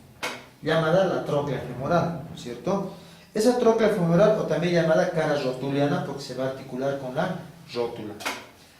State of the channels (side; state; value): both; identical; correlation 1.00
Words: llamada la tróclea femoral, ¿cierto? Esa tróclea femoral, o también llamada cara rotuliana, porque se va a articular con la rótula.